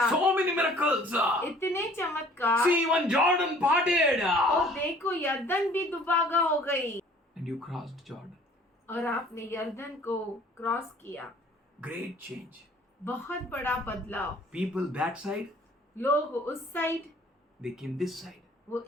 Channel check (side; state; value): both; normal; correlation 0.54